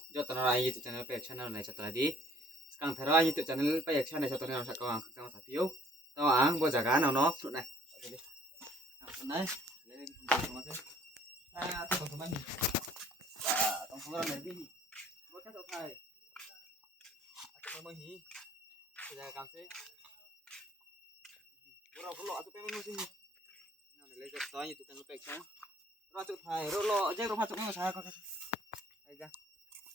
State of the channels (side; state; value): both; normal; correlation 0.59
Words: joto na YouTube channel pa channel này cho tadi. Sekarang thera YouTube channel pa channel cho tadi nak kawang kakang sapio. Tahu ang bo jaga nào nó fruit này. Này. Ah, teman-teman. Ah, teman-teman này đi. Bo ka to thai. Aku mau hi. Jaga kam se. Bro, lo atu pengen musim. Nah, lấy giật to YouTube channel pa channel. Ro tu thai, ro lo je ro masuk nang sa ko. Aja.